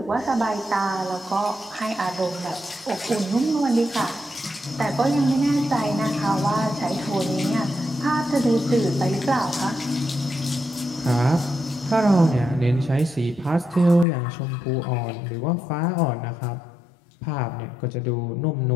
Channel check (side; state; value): right; drops out; at 14.1 s